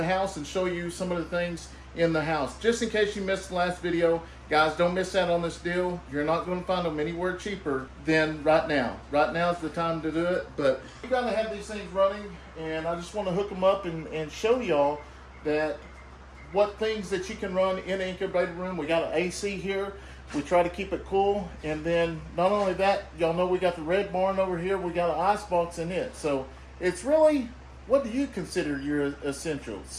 house and show you some of the things in the house. Just in case you missed the last video, guys, don't miss out on this deal. You're not going to find them anywhere cheaper than right now. Right now is the time to do it, but you got to have these things running, and I just want to hook them up and show y'all that what things that you can run in the incubator room. We got an AC here. We try to keep it cool, and then not only that, y'all know we got the red barn over here. We got an ice box in it. So it's really, what do you consider your essentials?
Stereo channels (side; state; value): both; identical; correlation 1.00